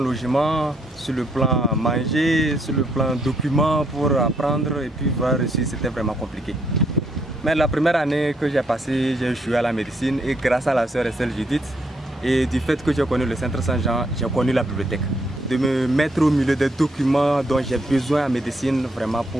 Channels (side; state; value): both; normal; correlation 0.73